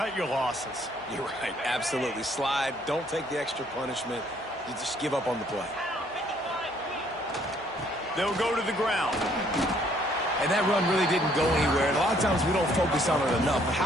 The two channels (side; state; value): both; normal; correlation 0.64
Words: your losses. You're right, absolutely. Slide, don't take the extra punishment. You just give up on the play. They'll go to the ground. And that run really didn't go anywhere. And a lot of times we don't focus on it enough, but